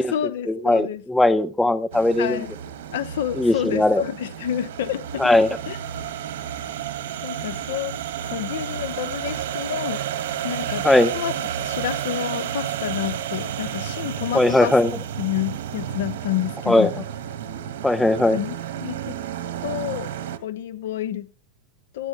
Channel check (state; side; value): normal; both; correlation 0.52